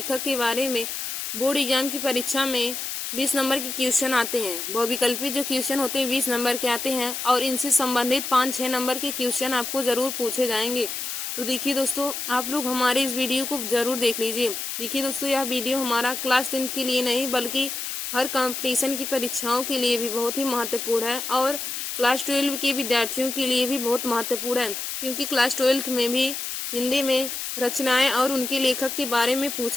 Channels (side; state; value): left; noise; hiss, 5 dB below the sound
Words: के बारे में बोर्ड एग्जाम की परीक्षा में 20 नंबर के क्वेश्चन आते हैं। बहुविकल्पी जो क्वेश्चन होते हैं 20 नंबर के आते हैं और इनसे संबंधित 5-6 नंबर के क्वेश्चन आपको जरूर पूछे जाएंगे। तो देखिए दोस्तों, आप लोग हमारे इस वीडियो को जरूर देख लीजिए। देखिए दोस्तों, यह वीडियो हमारा क्लास 10th के लिए नहीं बल्कि हर कंपटीशन की परीक्षाओं के लिए भी बहुत ही महत्वपूर्ण है और क्लास 12 के विद्यार्थियों के लिए भी बहुत महत्वपूर्ण है, क्योंकि क्लास 12th में भी हिंदी में रचनाएं और उनके लेखक के बारे में